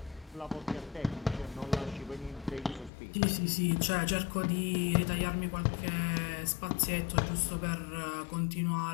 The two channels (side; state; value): right; drops out; at 2.9 s